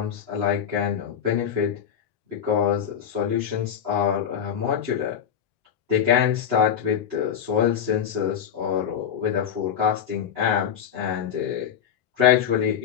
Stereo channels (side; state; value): right; quieter; 8.5 dB